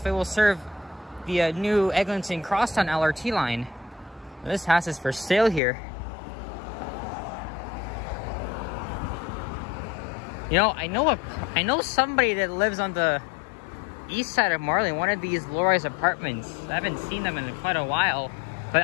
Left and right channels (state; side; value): drops out; right; at 5.6 s